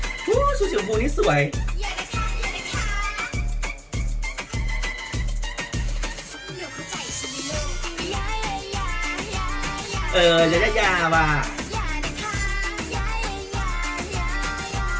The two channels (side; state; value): both; identical; correlation 1.00